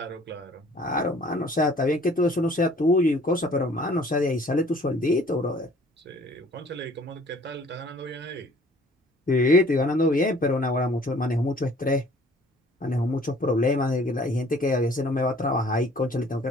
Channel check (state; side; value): normal; both; correlation 0.54